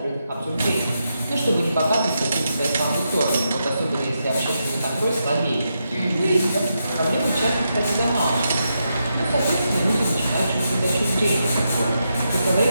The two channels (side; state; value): both; inverted; correlation -0.84